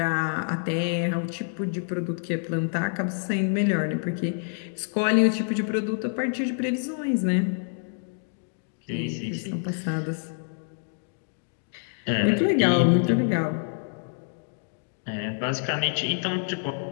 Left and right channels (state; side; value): silent; right; digital silence